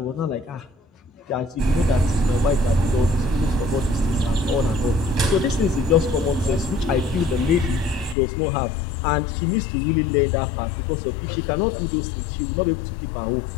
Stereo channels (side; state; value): right; drops out; at 8.2 s